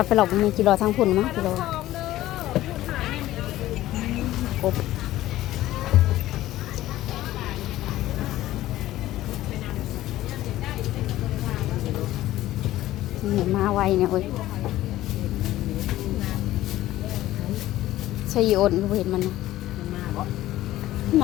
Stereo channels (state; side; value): quieter; right; 15.1 dB